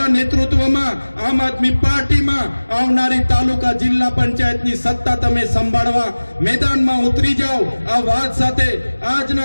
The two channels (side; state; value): both; inverted; correlation -1.00